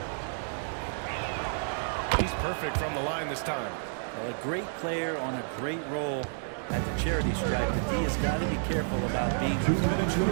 He's perfect from the line this time. Well, a great player on a great role at the charity stripe. The D has got to be careful about being too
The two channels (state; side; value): silent; left; digital silence